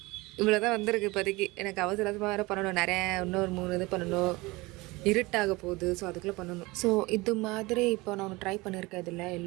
இவ்வளோ தான் வந்திருக்கு இப்போதைக்கு. எனக்கு அவசரமாக வேறு பண்ணணும். நிறைய இன்னொரு 3 இது பண்ணணும். இருட்டாக போகுது. ஸோ அதுக்குள்ளே பண்ணணும். ஸோ இது மாதிரி இப்போ நான் ஒன்று ட்ரை பண்ணியிருக்கேன். இதில்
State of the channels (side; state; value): left; quieter; 22.6 dB